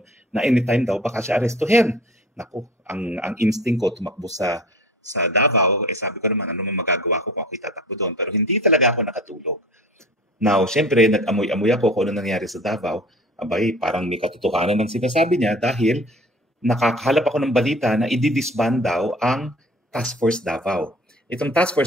na anytime daw baka siya arestuhin. Naku, ang instinct ko tumakbo sa Davao, sabi ko naman, ano man magagawa ko kung ako itatakbo doon. Pero hindi talaga ako nakatulog. Now, syempre, nag-amoy-amoy ako kung ano nangyari sa Davao. Abay, parang may katotohanan ng sinasabi niya dahil nakakahalap ako ng balita na i-disband daw ang Task Force Davao. Itong Task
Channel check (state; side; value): normal; both; correlation 0.43